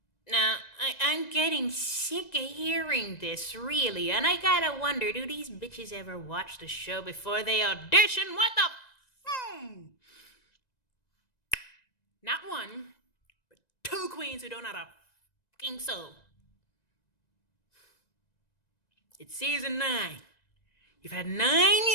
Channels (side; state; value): right; late; 1.9 ms